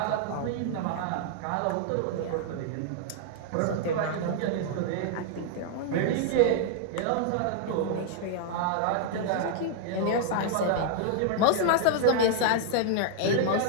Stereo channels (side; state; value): both; different; correlation -0.01